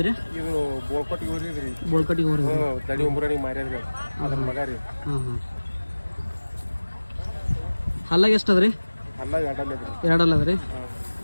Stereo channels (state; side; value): inverted; both; correlation -1.00